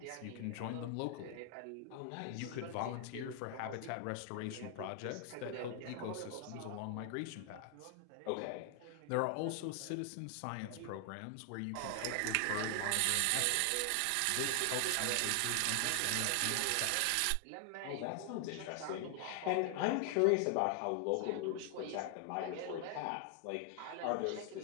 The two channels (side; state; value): both; different; correlation 0.00